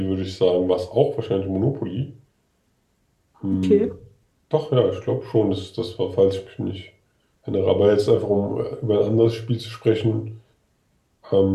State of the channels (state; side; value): identical; both; correlation 1.00